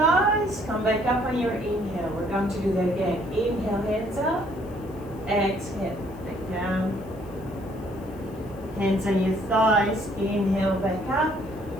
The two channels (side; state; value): left; noise; hiss, 28 dB below the sound